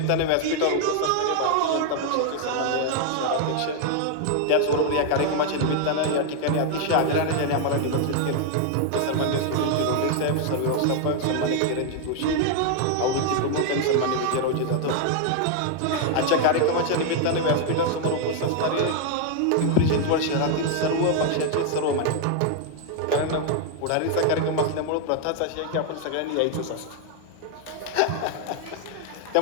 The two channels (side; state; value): both; different; correlation 0.00